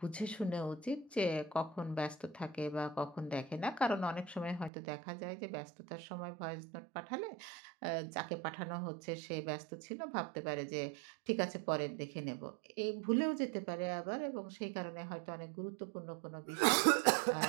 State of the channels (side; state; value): left; drops out; at 4.7 s